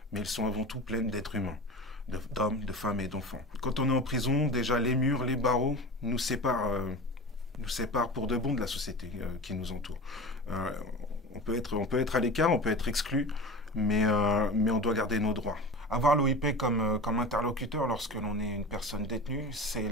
mais elles sont avant tout pleines d'êtres humains, d'hommes, de femmes et d'enfants. Quand on est en prison, déjà les murs, les barreaux nous séparent pour de bon de la société qui nous entoure. On peut être à l'écart, on peut être exclu, mais on doit garder nos droits. Avoir l'OIP comme interlocuteur lorsque l'on est une personne détenue, c'est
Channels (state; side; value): normal; both; correlation 0.31